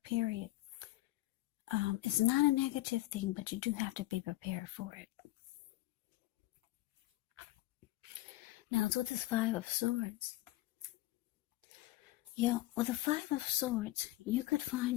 period. It's not a negative thing, but you do have to be prepared for it. Now, it's with this Five of Swords. With the Five of Swords, you could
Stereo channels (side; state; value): right; quieter; 17.1 dB